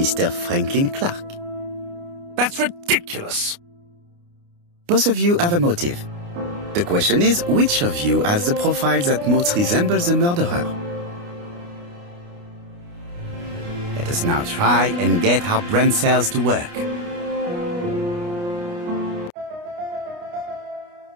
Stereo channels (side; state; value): left; late; 29 ms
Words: Franklin Clark? That's ridiculous. Both of you have a motive. The question is, which of you has the profile that most resembles the murderer? Let us now try and get our brain cells to work.